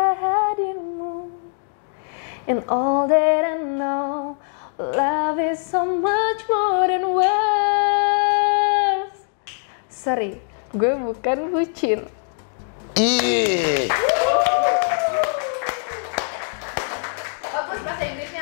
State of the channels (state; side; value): silent; right; 64 dB below the other